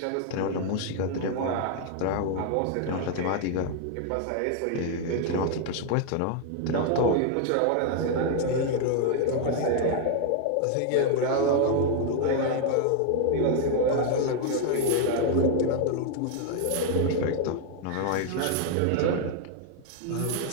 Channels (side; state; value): both; different; correlation 0.00